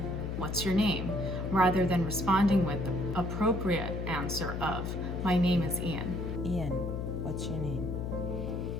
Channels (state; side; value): noise; left; hum, 3 dB below the sound